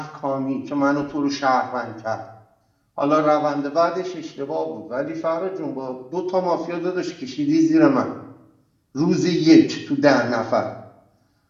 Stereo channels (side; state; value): both; identical; correlation 1.00